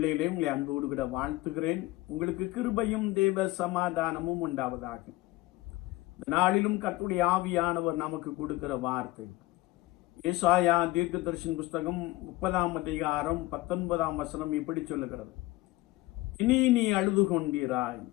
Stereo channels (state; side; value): quieter; right; 19.1 dB